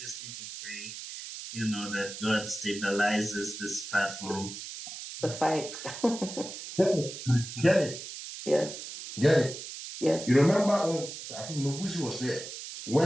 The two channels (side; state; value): right; noise; hiss, 10 dB below the sound